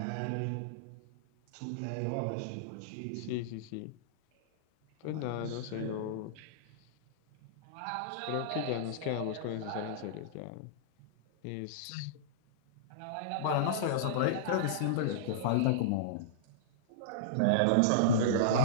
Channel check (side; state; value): both; different; correlation -0.03